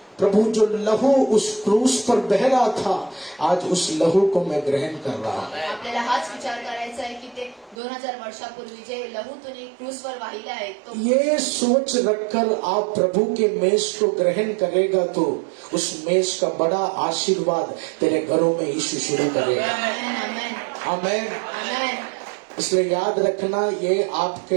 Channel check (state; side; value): drops out; left; at 7.8 s